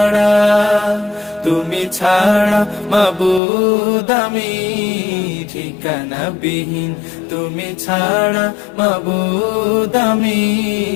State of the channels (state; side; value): drops out; right; at 3.4 s